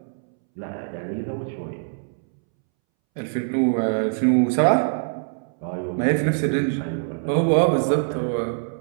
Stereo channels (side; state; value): left; silent; 63 dB below the other